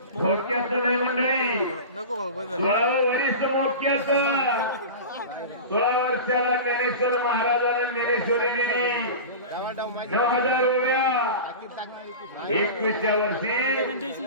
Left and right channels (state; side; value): inverted; both; correlation -0.30